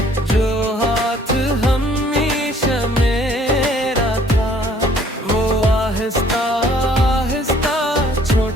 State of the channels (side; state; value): both; normal; correlation 0.59